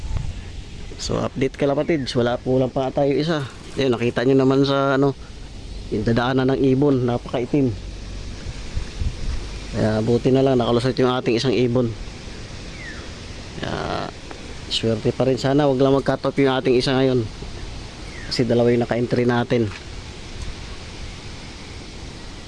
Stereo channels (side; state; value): both; identical; correlation 1.00